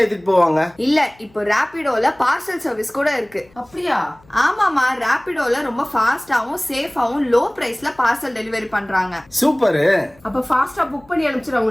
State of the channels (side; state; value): left; noise; hum, 29 dB below the sound